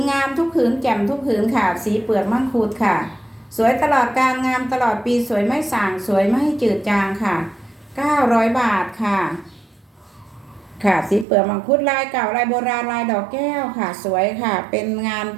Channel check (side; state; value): left; drops out; at 11.2 s